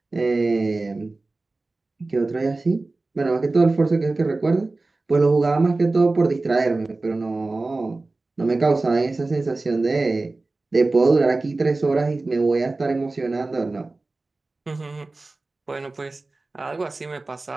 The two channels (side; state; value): left; quieter; 3.3 dB